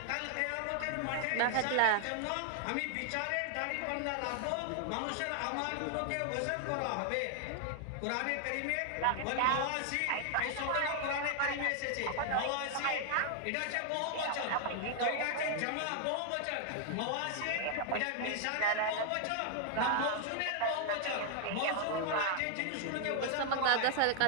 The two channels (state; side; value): different; both; correlation 0.00